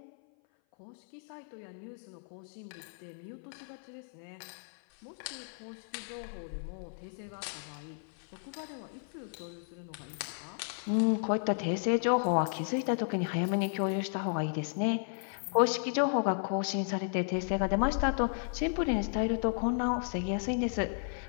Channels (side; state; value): right; silent; 55 dB below the other